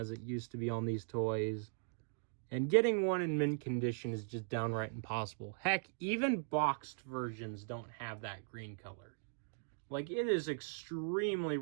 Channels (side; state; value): left; silent; digital silence